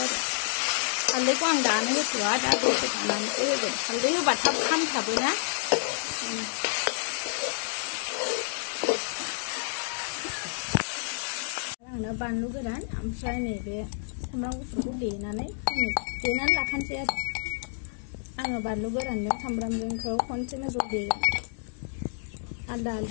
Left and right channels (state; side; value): silent; right; digital silence